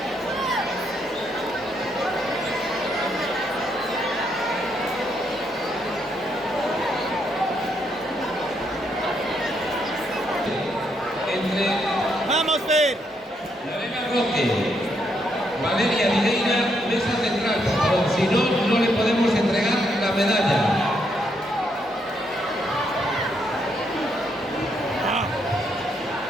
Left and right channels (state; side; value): normal; both; correlation 0.76